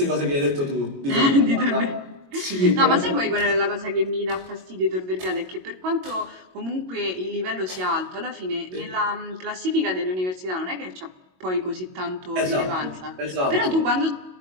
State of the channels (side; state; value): left; late; 22 ms